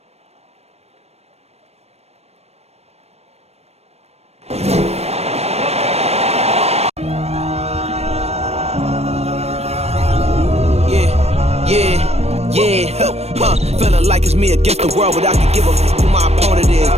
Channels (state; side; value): late; left; 0.31 ms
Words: Feeling like it's me against the world, but I can give a fuck who my opponent